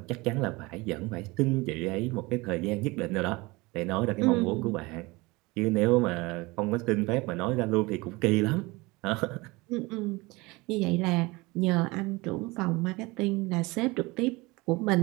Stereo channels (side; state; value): left; quieter; 23.4 dB